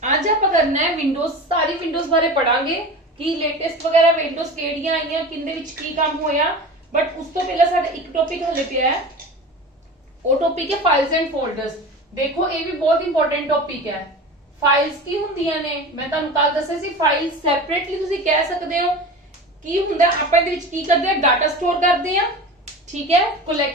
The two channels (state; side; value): normal; both; correlation 0.32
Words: ਅੱਜ ਆਪਾਂ ਕਰਨਾ ਹੈ ਵਿੰਡੋਜ਼, ਸਾਰੀ ਵਿੰਡੋਜ਼ ਬਾਰੇ ਪੜਾਂਗੇ ਕਿ ਲੇਟੈਸਟ ਵਗੈਰਾ ਵਿੰਡੋਜ਼ ਕਿਹੜੀਆਂ ਆਈਆਂ, ਕਿੰਦੇ ਵਿੱਚ ਕੀ ਕੰਮ ਹੋਇਆ। ਬਟ ਉਸ ਤੋਂ ਪਹਿਲਾਂ ਸਾਡਾ ਇੱਕ ਟੌਪਿਕ ਹਲੇ ਪਿਆ ਹੈ, ਉਹ ਟੌਪਿਕ ਹੈ ਫਾਈਲਸ ਐਂਡ ਫੋਲਡਰਸ। ਦੇਖੋ ਇਹ ਵੀ ਬਹੁਤ ਇੰਪੋਰਟੈਂਟ ਟੌਪਿਕ ਹੈ। ਫਾਈਲਸ ਕੀ ਹੁੰਦੀਆਂ ਨੇ, ਮੈਂ ਤੁਹਾਨੂੰ ਕੱਲ ਦੱਸਿਆ ਸੀ। ਫਾਈਲ ਸੈਪਰੇਟਲੀ ਤੁਸੀਂ ਕਹਿ ਸਕਦੇ ਹੋ ਕੀ ਹੁੰਦਾ। ਆਪਾਂ ਇਹਦੇ ਵਿੱਚ ਕੀ ਕਰਦੇ ਆ, ਡਾਟਾ ਸਟੋਰ ਕਰਦੇ ਆ। ठीक है,